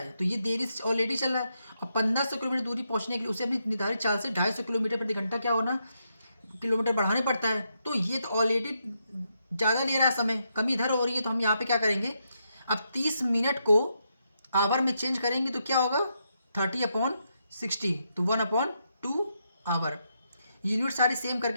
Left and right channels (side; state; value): both; inverted; correlation -0.81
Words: तो ये देरी से ऑलरेडी चल रहा है और 1500 किलोमीटर दूरी पहुंचने के लिए उसे अपनी निर्धारित चाल से 250 किलोमीटर प्रति घंटा क्या होना, किलोमीटर बढ़ाने पड़ता है। तो ये तो ऑलरेडी ज़्यादा ले रहा है समय, कमी इधर हो रही है। तो हम यहाँ पे क्या करेंगे, अब 30 मिनट को आवर में चेंज करेंगे तो क्या होगा 30/60, तो 1/2 आवर। यूनिट सारी सेम